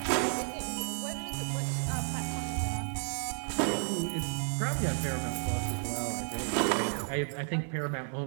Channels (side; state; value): left; silent; 56 dB below the other